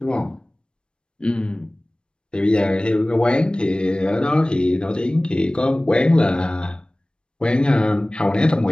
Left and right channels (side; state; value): right; late; 0.053 ms